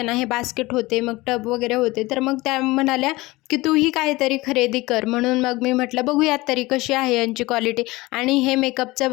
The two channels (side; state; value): right; quieter; 20.8 dB